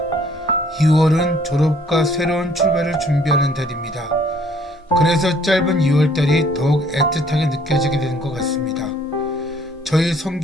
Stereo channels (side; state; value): both; normal; correlation 0.60